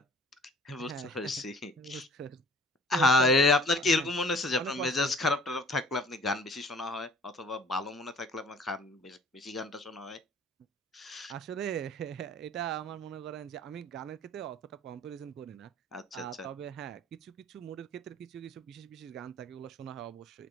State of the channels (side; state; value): both; normal; correlation 0.49